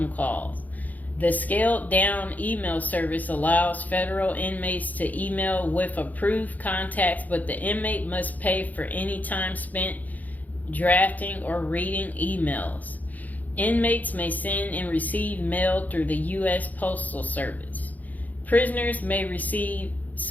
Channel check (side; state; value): right; late; 0.080 ms